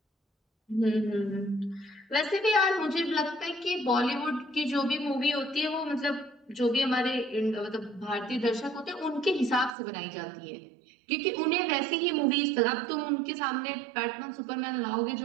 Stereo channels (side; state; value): left; drops out; at 9.8 s